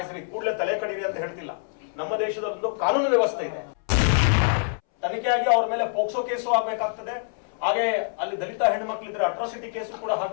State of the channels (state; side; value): silent; right; 61 dB below the other